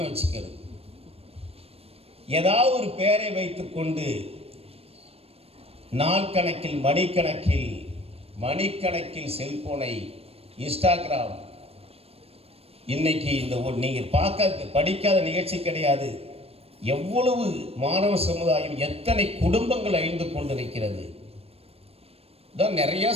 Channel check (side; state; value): left; late; 0.29 ms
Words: வச்சுக்கிறது. ஏதாவது ஒரு பெயரை வைத்துக்கொண்டு நாள் கணக்கில், மணிக்கணக்கில் செல்போனை, இன்ஸ்டாகிராம். இன்னைக்கு இந்த நீங்கள் படிக்காத நிகழ்ச்சி கிடையாது. எவ்வளவு மாணவ சமுதாயம், எத்தனை குடும்பங்கள் அழிந்து கொண்டிருக்கிறது. தான் நிறைய